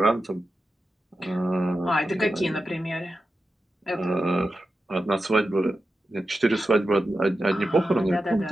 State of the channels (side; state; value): both; normal; correlation 0.91